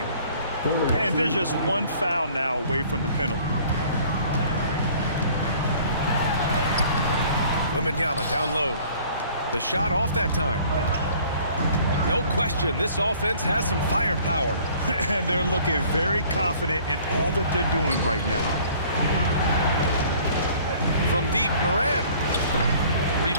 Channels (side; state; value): both; inverted; correlation -0.54